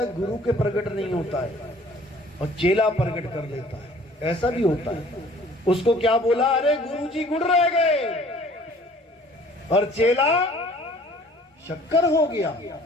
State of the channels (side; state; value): both; normal; correlation 0.53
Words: गुरु के प्रगट नहीं होता है और चेला प्रगट कर लेता है, ऐसा भी होता है। उसको क्या बोला? अरे गुरुजी गुड़ रह गए, और चेला शक्कर हो गया।